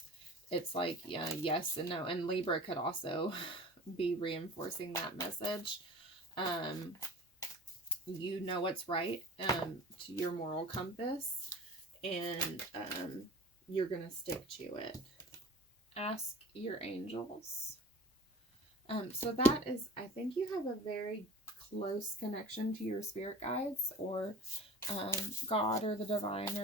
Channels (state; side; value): normal; both; correlation 0.42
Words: it's like, yes and no. And Libra could also be reinforcing that message. You know what's right, to your moral compass, and you're gonna stick to it. Ask your angels. So that is, I think you have a very close connection to your spirit guides, or God, or the divine,